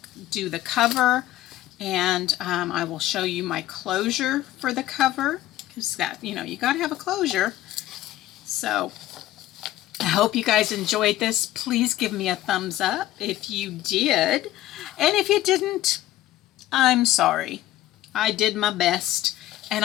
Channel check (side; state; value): right; quieter; 14.7 dB